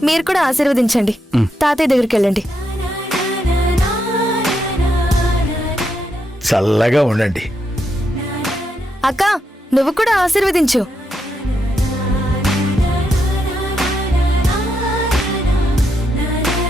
మీరు కూడా ఆశీర్వదించండి. తాతయ్య దగ్గరికి వెళ్ళండి. చల్లగా ఉండండి. అక్క నువ్వు కూడా ఆశీర్వదించు.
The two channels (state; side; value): normal; both; correlation 0.81